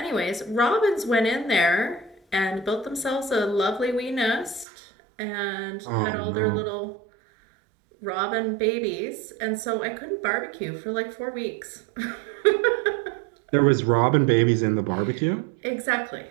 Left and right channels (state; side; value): drops out; left; at 4.7 s